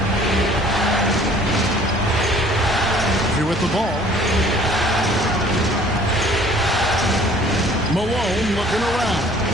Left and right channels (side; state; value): both; normal; correlation 0.54